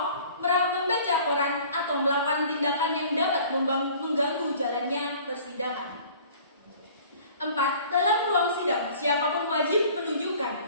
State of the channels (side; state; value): both; inverted; correlation -0.49